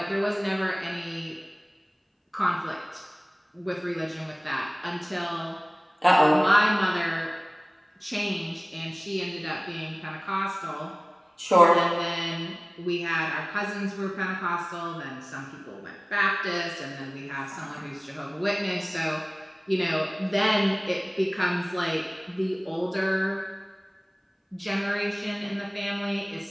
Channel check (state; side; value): identical; both; correlation 1.00